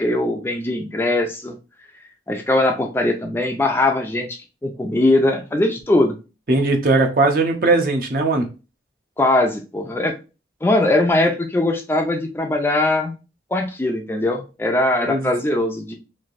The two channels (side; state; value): both; normal; correlation 0.58